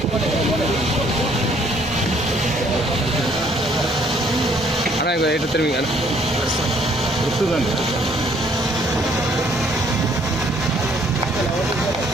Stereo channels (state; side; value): normal; both; correlation 0.63